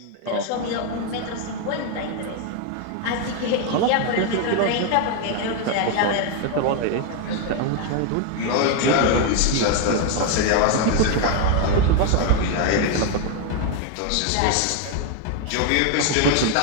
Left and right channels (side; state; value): both; different; correlation 0.01